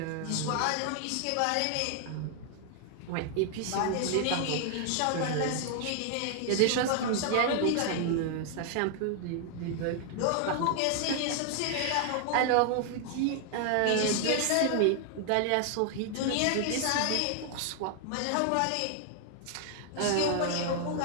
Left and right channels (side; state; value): both; different; correlation 0.00